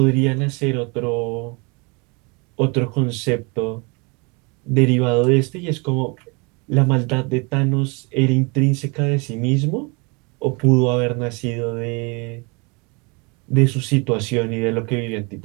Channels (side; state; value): left; quieter; 30.4 dB